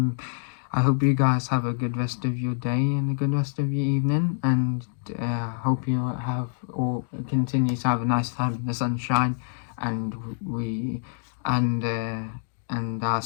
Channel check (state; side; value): silent; right; digital silence